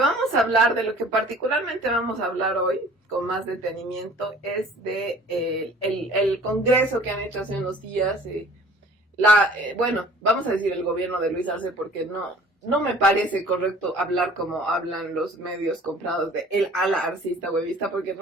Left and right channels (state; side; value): normal; both; correlation 0.49